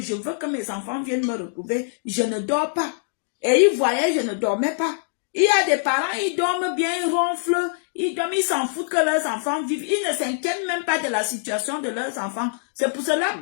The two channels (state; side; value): silent; right; digital silence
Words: je veux que mes enfants viennent me retrouver. Je ne dors pas. Et ils voyaient, je ne dormais pas. Il y a des parents, ils dorment bien, ils ronflent, ils dorment, ils s'en foutent que leurs enfants vivent. Ils ne s'inquiètent même pas de la situation de leurs enfants. C'est pour cela